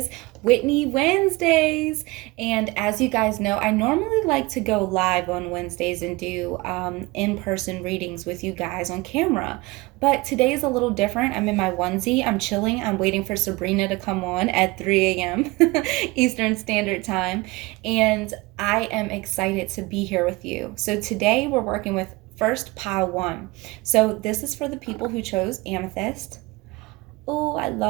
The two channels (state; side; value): quieter; left; 22.7 dB